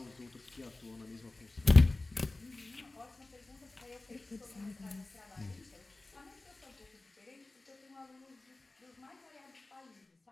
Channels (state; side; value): quieter; right; 3.0 dB